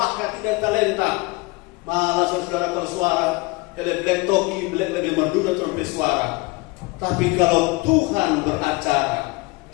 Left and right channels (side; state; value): right; quieter; 24.3 dB